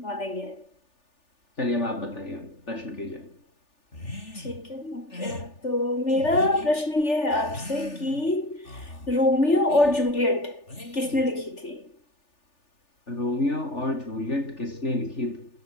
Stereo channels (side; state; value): right; late; 3.4 ms